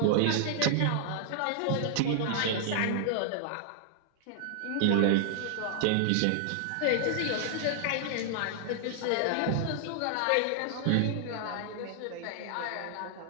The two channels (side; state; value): both; different; correlation -0.01